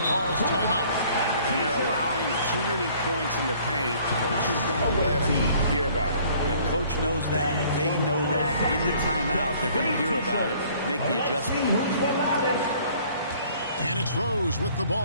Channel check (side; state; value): both; inverted; correlation -0.56